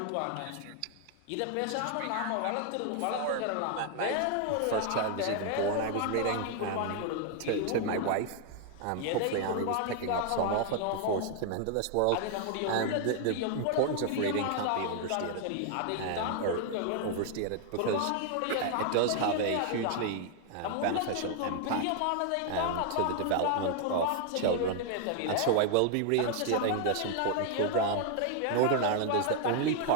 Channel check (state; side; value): different; both; correlation 0.00